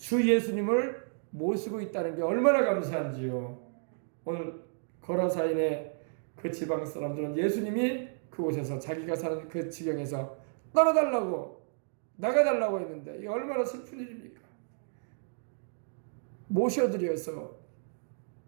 예수님을 모시고 있다는 게 얼마나 감사한지요. 오늘 거라사인의 그 지방 사람들은 예수님이 그곳에서 자기가 사는 그 지경에서 떠나달라고 나가달라고 했는데 이게 얼마나 슬픈 일입니까? 모셔드려서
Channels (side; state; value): left; silent; digital silence